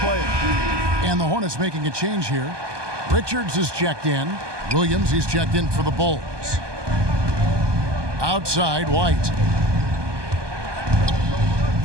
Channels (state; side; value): late; left; 1.2 ms